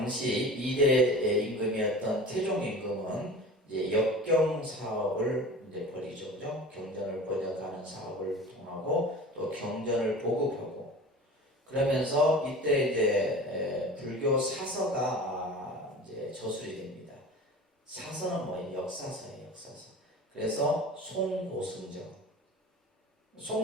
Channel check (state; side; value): normal; both; correlation 0.37